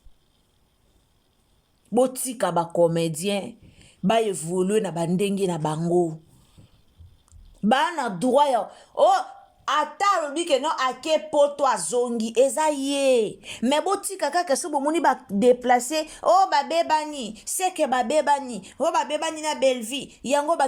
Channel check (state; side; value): identical; both; correlation 1.00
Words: botika bacomédien baévolue na bandenge na bango bana droit ya ata alobi ke non ake poto azongi eza ye me botika kaka so bomoni badeplace babebani seke babebani babebani na belle vie yango